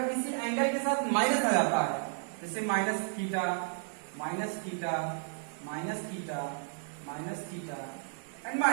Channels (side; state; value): left; silent; digital silence